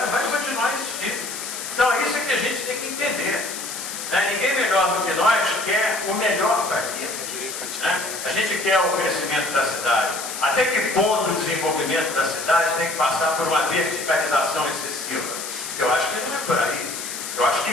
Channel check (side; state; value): left; noise; hiss, 7 dB below the sound